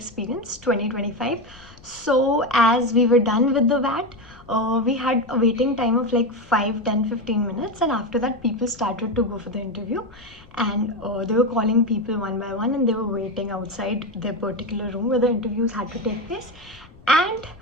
2025. So as we were done with the VAT, we had a waiting time of like 5, 10, 15 minutes, and after that people started to go for the interview, and they were calling people one by one and they were waiting outside their particular room where the interviews had to take place.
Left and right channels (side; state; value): left; noise; rumble, 23 dB below the sound